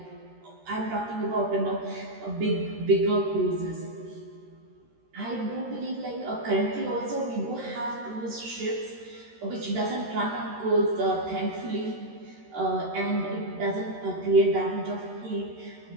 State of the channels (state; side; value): late; left; 13 ms